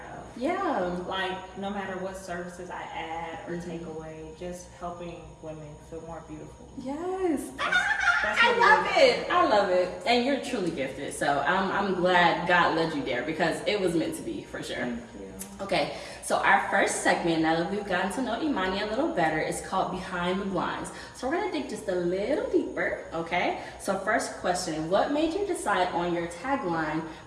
of. Yeah. Like, no matter what services I add or take away, just helping women feel more beautiful. Yes. That's I love it. I love it. And you're truly gifted. So I'm glad God led you there because it was meant to be, for sure. Thank you. Okay, so our first segment, now that we've gotten to know Imani a little better, is called Behind the Blinds. So we're going to dig just a little deeper, okay? So first question, what made you decide on your tagline,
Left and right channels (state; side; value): identical; both; correlation 1.00